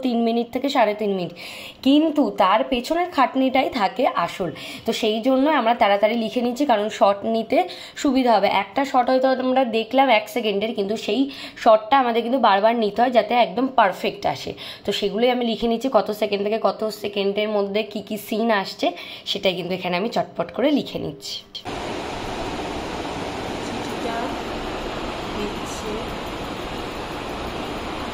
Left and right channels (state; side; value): identical; both; correlation 1.00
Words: 3 মিনিট থেকে 3.5 মিনিট, কিন্তু তার পেছনের খাটনিটাই থাকে আসল। তো সেই জন্য আমরা তাড়াতাড়ি লিখে নিচ্ছি, কারণ শট নিতে সুবিধা হবে। একটা শট হয়তো আমরা দেখলাম 1 সেকেন্ডের, কিন্তু সেই শটটা আমাদের কিন্তু বারবার নিতে হয় যাতে একদম পারফেক্ট আসে। তো সেগুলোই আমি লিখে নিচ্ছি, কত সেকেন্ড থেকে কত সেকেন্ডের মধ্যে কি কি সিন আসছে সেটাই কিন্তু এখানে আমি চটপট করে লিখে নিচ্ছি।